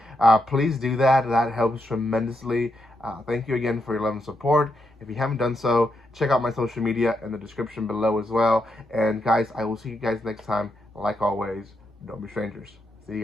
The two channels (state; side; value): normal; both; correlation 0.82